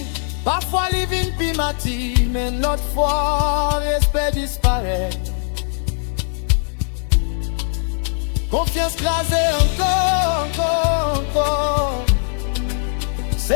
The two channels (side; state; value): right; silent; 58 dB below the other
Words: parfois li vin pi mati, mais notre fois respect disparaît. Confiance crasée encore.